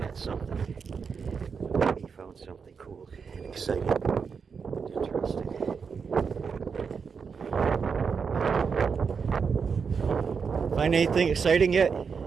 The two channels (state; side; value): quieter; left; 5.8 dB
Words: at something. He found something cool and exciting and interesting. Find anything exciting yet?